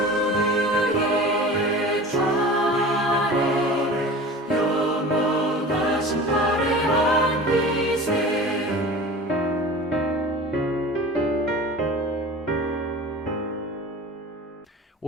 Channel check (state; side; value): normal; both; correlation 0.37